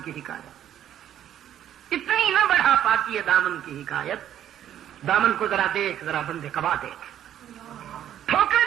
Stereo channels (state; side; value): quieter; left; 10.8 dB